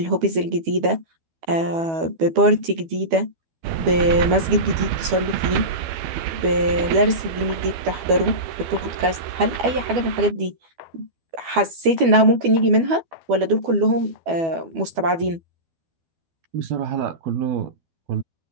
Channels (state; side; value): late; left; 12 ms